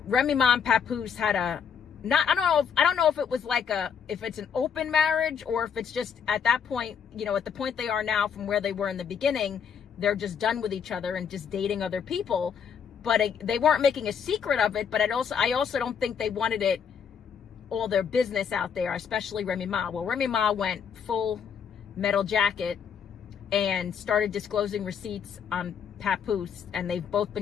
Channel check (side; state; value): right; quieter; 7.2 dB